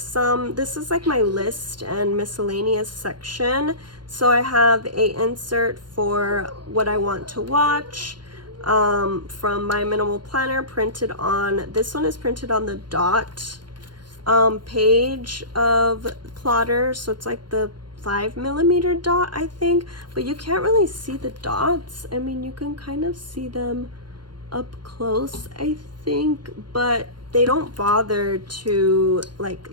this is like my list and miscellaneous section. So I have a insert for what I want to watch from my minimal planner, printed on, this one is printed on the dot page of plotter. So it's like the 5mm dot, I think, but you can't really see the dots. I mean, you can kind of see them up close, I think, but they don't bother to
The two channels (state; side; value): late; left; 0.71 ms